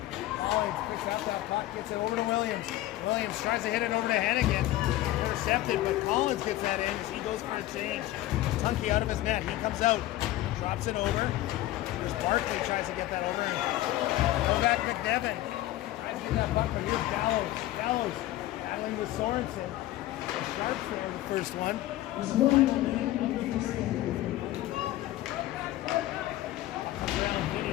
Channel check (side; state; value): right; quieter; 15.6 dB